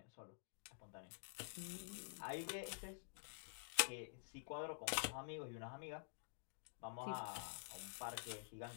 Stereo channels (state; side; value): silent; right; digital silence